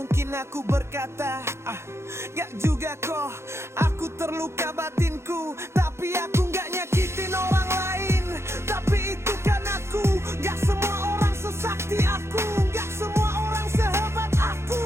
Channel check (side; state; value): left; late; 0.13 ms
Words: aku berkata, gak juga kok, aku terluka batinku, tapi aku gak nyakitin orang lain. Tapi itu kan aku, gak semua orang sesakti aku, gak semua orang sehebat aku.